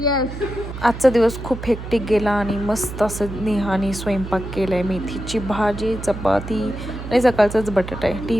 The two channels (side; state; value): right; noise; hum, 9 dB below the sound